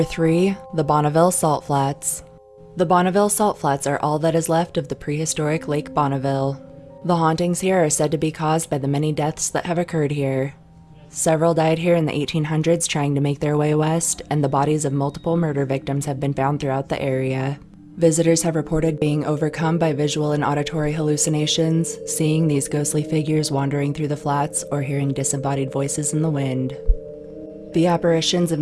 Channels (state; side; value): identical; both; correlation 1.00